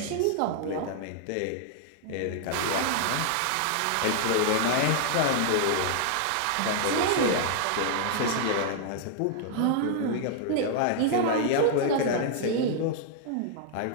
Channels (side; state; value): both; different; correlation -0.01